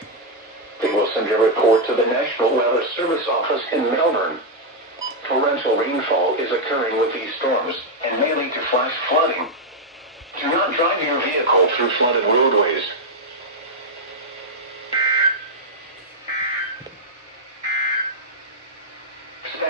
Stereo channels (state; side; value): normal; both; correlation -0.01